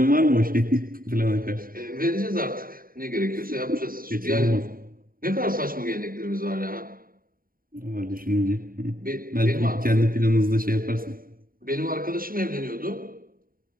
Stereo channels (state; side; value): late; left; 0.41 ms